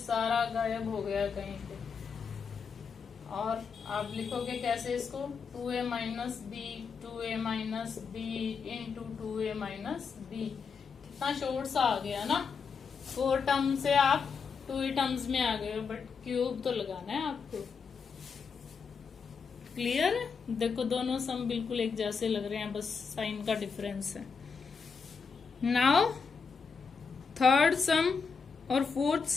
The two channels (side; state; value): right; quieter; 5.5 dB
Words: गायब हो गया कहीं पे, और आप लिखोगे कैसे इसको, 2a minus b 2a minus b into 2a minus b. कितना शॉर्ट सा आ गया ना, 4 टर्म से आप 2 ही टर्म्स में आ गए हो, बट क्यूब तो लगाना है आपको। क्लियर है? देखो दोनों सम बिल्कुल एक जैसे लग रहे हैं, बस साइन का डिफरेंस है। नाउ थर्ड सम और fourth